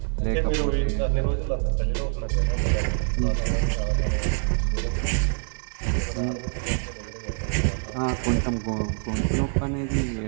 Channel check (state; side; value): silent; left; 56 dB below the other